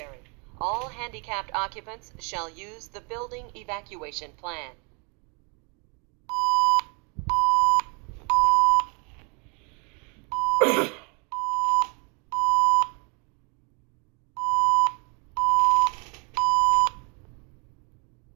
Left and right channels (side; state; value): left; quieter; 33.3 dB